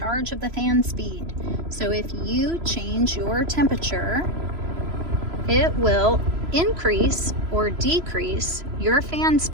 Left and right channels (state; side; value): late; left; 3.0 ms